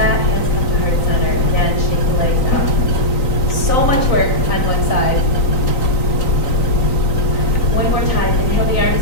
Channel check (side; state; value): right; late; 3.9 ms